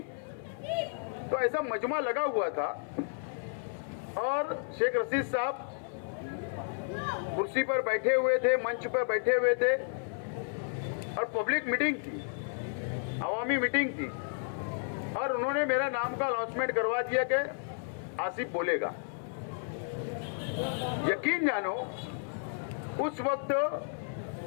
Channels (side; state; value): right; silent; 56 dB below the other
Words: तो ऐसा मजमा लगा हुआ था और शेख रशीद साहब कुर्सी पर बैठे हुए थे, मंच पर बैठे हुए थे और पब्लिक मीटिंग थी, अवामी मीटिंग थी, और उन्होंने मेरा नाम का अनाउंसमेंट करवा दिया कि आसिफ बोलेगा। यकीन जानो, उस वक्त